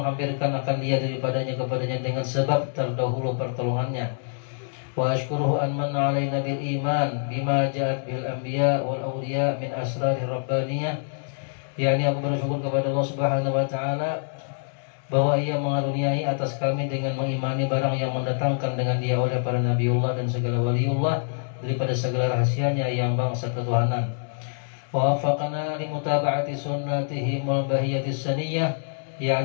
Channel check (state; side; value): silent; right; digital silence